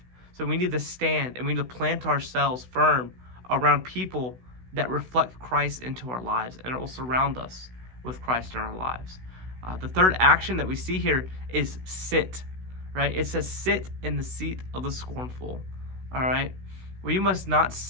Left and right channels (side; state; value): left; late; 16 ms